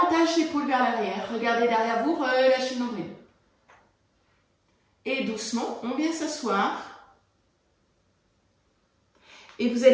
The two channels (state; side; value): identical; both; correlation 1.00